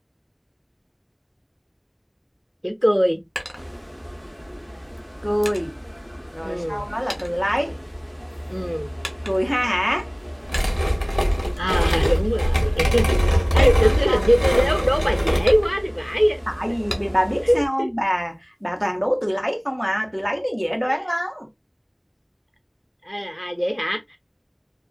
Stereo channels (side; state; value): both; identical; correlation 1.00